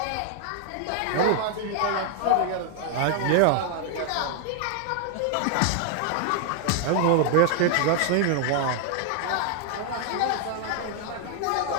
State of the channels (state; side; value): different; both; correlation 0.00